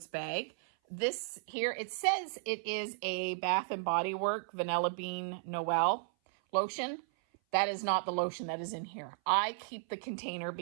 bag. This here, it says it is a Bath and Body Works Vanilla Bean Noel lotion. That is not the lotion that is in here. I keep the container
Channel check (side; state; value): left; silent; 55 dB below the other